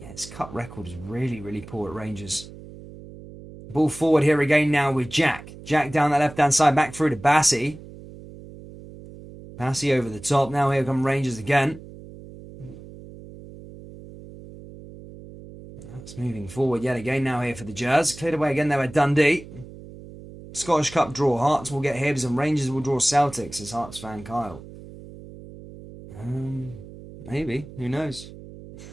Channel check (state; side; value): noise; right; hum, 16 dB below the sound